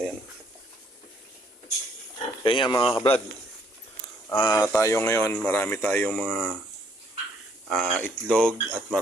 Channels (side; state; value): both; normal; correlation 0.66